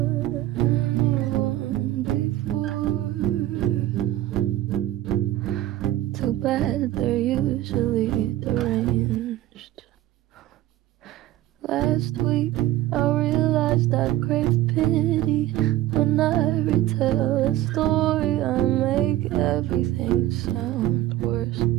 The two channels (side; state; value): left; quieter; 14.6 dB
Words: Too bad they're usually deranged. Last week I realized I crave pity. When I retell a story I make everything sound worse.